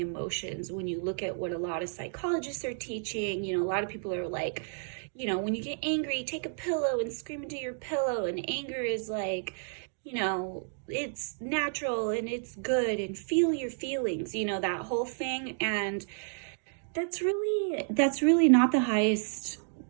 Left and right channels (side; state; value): left; silent; digital silence